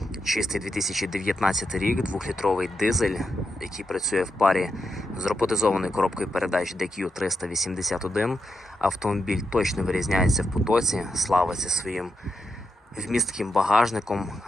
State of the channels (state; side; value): normal; both; correlation 0.85